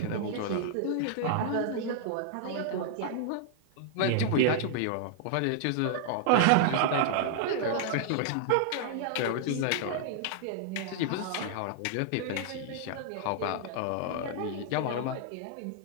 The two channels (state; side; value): different; both; correlation -0.01